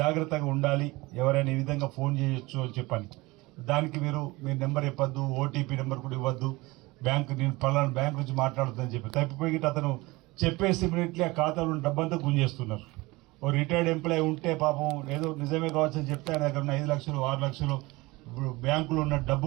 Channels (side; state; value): left; quieter; 22.0 dB